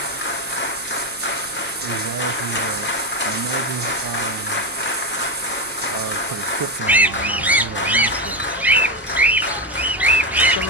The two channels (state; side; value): noise; right; hum, 26 dB below the sound